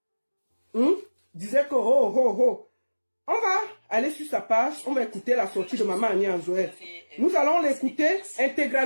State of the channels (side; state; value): both; inverted; correlation -1.00